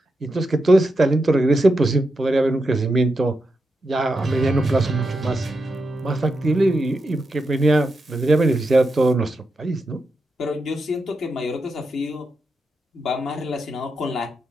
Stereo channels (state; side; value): normal; both; correlation 0.86